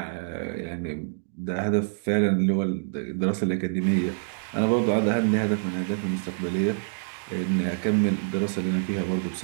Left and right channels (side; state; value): left; silent; digital silence